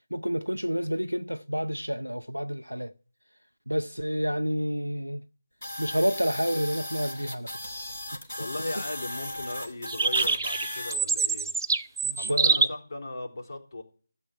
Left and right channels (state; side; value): inverted; both; correlation -0.64